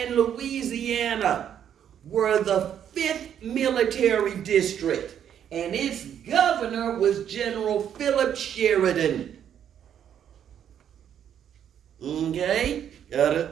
Louisiana were the 5th military district, and its governor was General Philip Sheridan. Okay? Got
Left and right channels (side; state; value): left; quieter; 9.3 dB